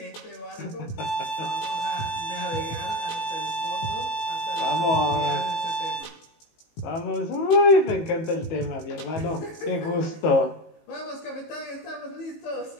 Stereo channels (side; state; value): right; late; 18 ms